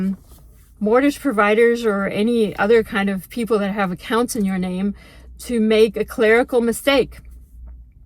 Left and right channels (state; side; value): identical; both; correlation 1.00